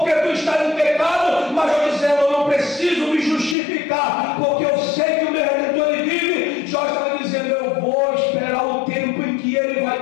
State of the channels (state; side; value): drops out; right; at 3.6 s